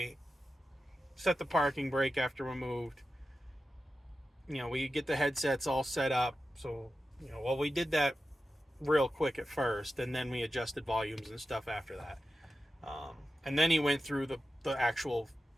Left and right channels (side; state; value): both; normal; correlation 0.92